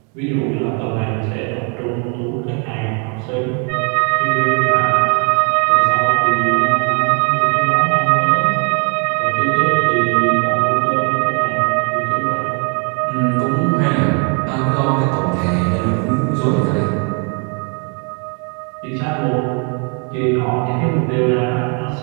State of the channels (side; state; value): left; quieter; 37.3 dB